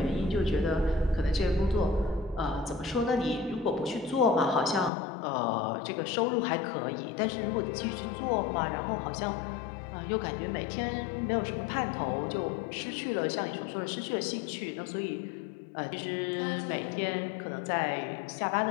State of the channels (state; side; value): drops out; right; at 4.9 s